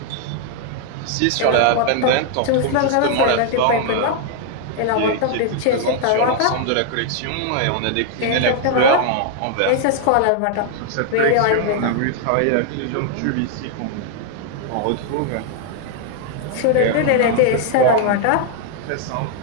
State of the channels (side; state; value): both; different; correlation 0.00